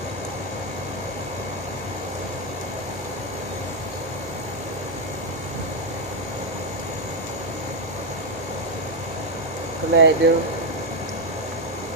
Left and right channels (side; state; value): both; normal; correlation 0.01